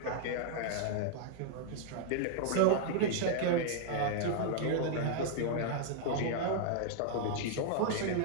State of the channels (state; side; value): different; both; correlation -0.01